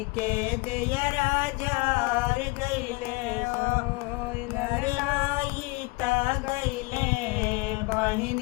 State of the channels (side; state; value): right; quieter; 25.7 dB